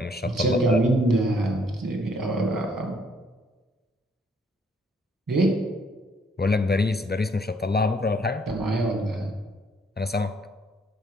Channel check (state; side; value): normal; both; correlation 0.66